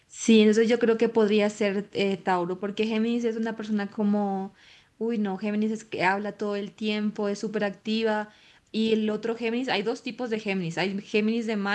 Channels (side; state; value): both; identical; correlation 1.00